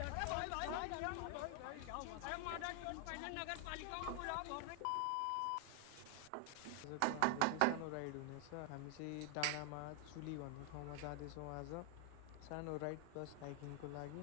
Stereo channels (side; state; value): both; different; correlation 0.00